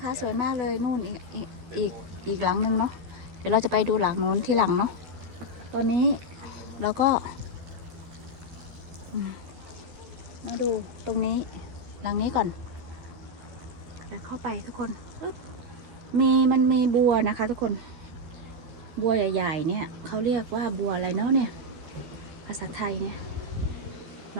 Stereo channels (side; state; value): left; late; 12 ms